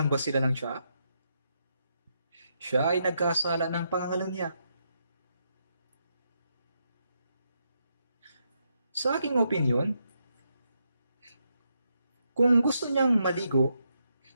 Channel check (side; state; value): both; inverted; correlation -0.80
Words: ba sila ng tsaa? Siya ay nagkasala ng pangangalunya. Sa aking opinyon, kung gusto niyang maligo,